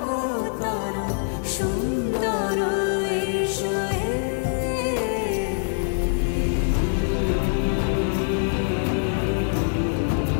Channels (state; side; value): silent; right; digital silence